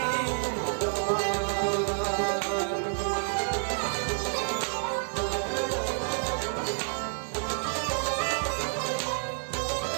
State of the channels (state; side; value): silent; left; digital silence